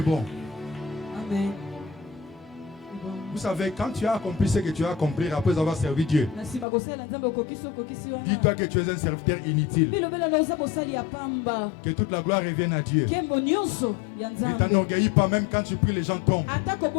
bon. Amen. Vous savez, quand tu as accompli ce que tu as accompli après avoir servi Dieu, dis-toi que tu es un serviteur inutile. Que toute la gloire revienne à Dieu. Ne t'enorgueillis pas, même quand tu pries, les gens tombent.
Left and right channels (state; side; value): drops out; right; at 6.7 s